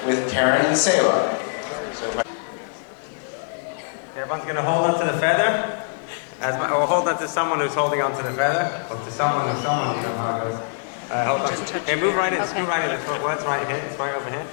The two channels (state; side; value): silent; right; digital silence